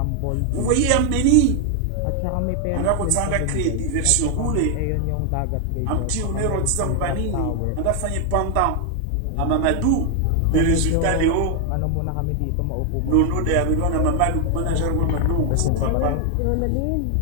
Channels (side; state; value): both; different; correlation 0.00